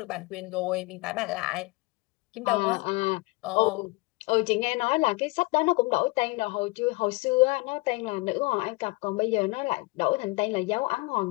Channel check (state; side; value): quieter; right; 25.1 dB